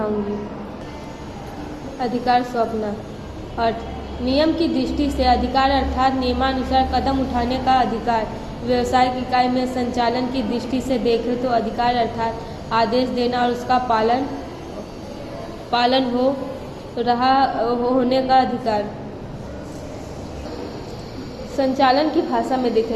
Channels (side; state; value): both; identical; correlation 1.00